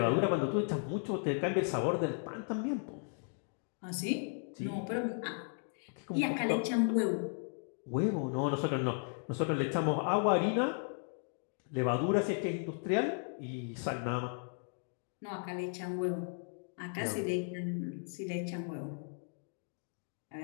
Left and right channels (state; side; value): silent; right; 54 dB below the other